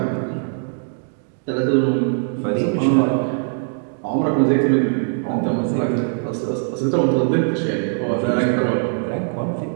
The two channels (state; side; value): silent; left; digital silence